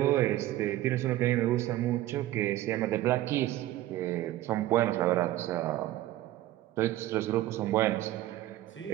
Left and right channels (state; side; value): quieter; left; 14.9 dB